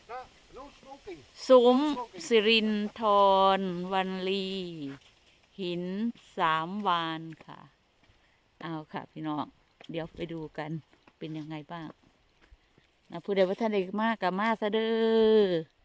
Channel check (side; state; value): both; identical; correlation 1.00